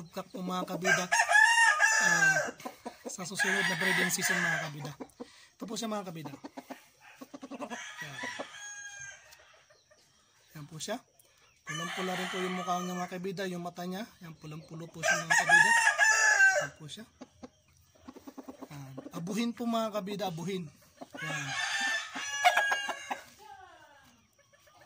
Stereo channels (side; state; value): both; identical; correlation 1.00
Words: po mga kabida sa susunod na breeding season mga kabida. Ito po siya mga kabida. Yan po siya. Pulang-pula rin po yung mukha niya mga kabida, yung mata niya. Yan pulang-pulo po siya mga kabida. Yan po siya. Abuhin po mga kabida, abuhin. Yan.